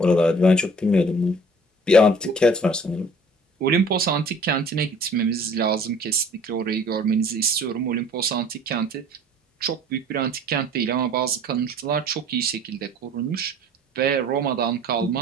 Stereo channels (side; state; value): both; normal; correlation 0.50